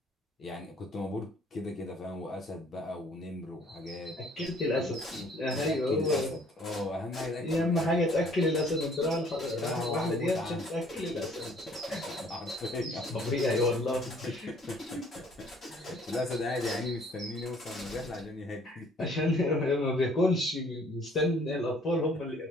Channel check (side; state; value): both; normal; correlation 0.58